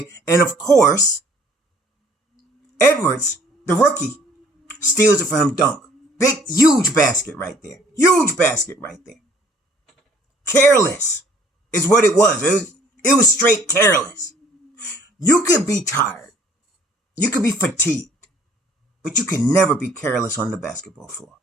And of course, Edwards, the rookie, steals it for him, dunk. Big, huge basket right there. Huge basket right there. Careless is what it was. It was straight careless. You could be tired. You could be fatigued, but you can never be careless on the basketball floor.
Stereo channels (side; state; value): both; normal; correlation 0.57